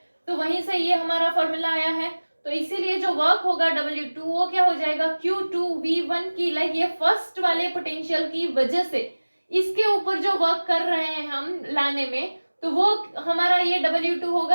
तो वहीं से ये हमारा फॉर्मूला आया है। तो इसीलिए जो वर्क होगा W2 वो क्या हो जाएगा, Q2V1 की, लाइक ये फर्स्ट वाले पोटेंशियल की वजह से इसके ऊपर जो वर्क कर रहे हैं हम लाने में, तो वो हमारा ये W2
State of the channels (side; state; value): both; inverted; correlation -1.00